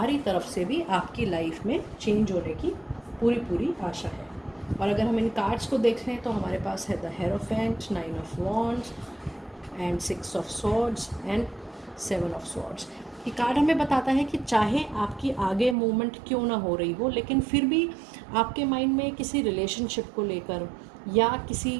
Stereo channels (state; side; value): drops out; left; at 15.8 s